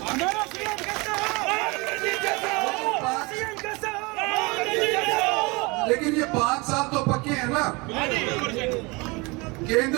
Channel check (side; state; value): left; quieter; 26.4 dB